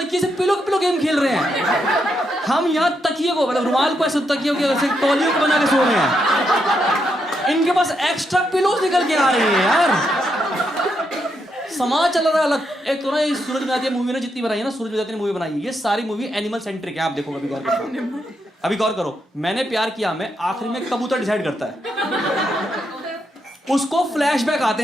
से पिलो गेम खेल रहे हैं। हम यहाँ तकिए को, मतलब रुमाल को ऐसे तकिए को ऐसे तौलियों को बना के सो रहे हैं। इनके पास एक्स्ट्रा पिलोज निकल के आ रही है यार। समाज चल रहा है अलग। एक तो ना ये सूरज बजाती मूवी ने जितनी बनाई है ना, सूरज बजाती ने मूवी बनाई है, ये सारी मूवी एनिमल सेंट्रिक है। आप देखो, अभी गौर करो, अभी गौर करो। मैंने प्यार किया में आखिर में कबूतर डिसाइड करता है, उसको फ्लैशबैक आते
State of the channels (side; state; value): both; normal; correlation 0.81